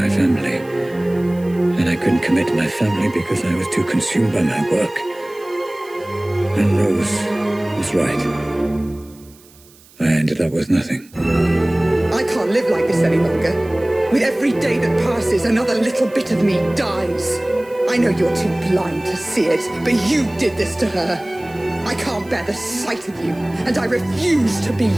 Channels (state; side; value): noise; right; hiss, 26 dB below the sound